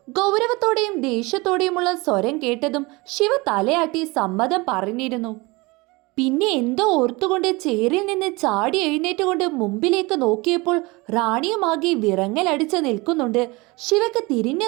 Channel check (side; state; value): left; quieter; 24.4 dB